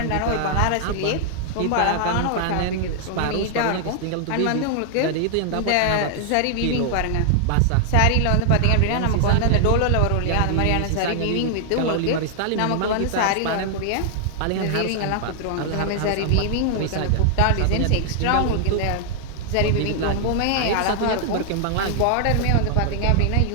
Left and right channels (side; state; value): both; different; correlation 0.00